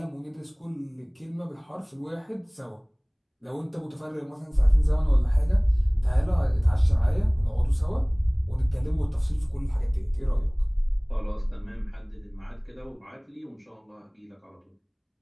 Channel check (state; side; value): identical; both; correlation 1.00